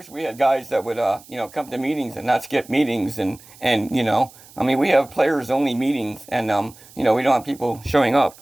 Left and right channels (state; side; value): noise; right; hiss, 23 dB below the sound